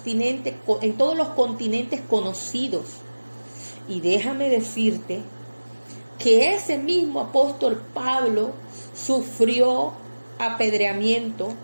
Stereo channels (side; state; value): both; inverted; correlation -1.00